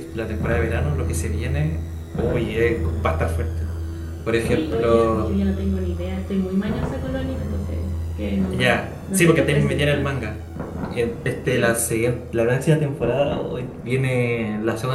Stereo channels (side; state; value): both; identical; correlation 1.00